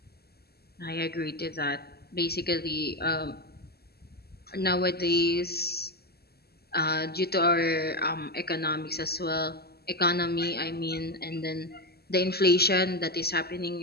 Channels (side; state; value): right; late; 0.46 ms